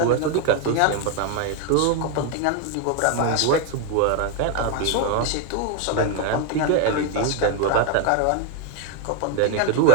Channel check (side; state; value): both; different; correlation 0.01